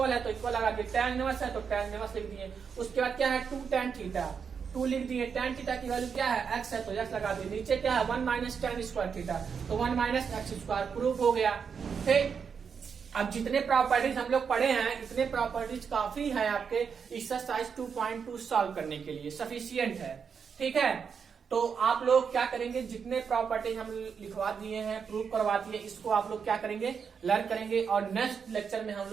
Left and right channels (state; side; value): quieter; left; 6.4 dB